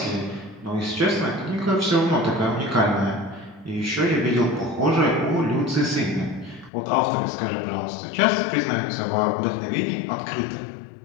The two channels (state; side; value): drops out; right; at 6.7 s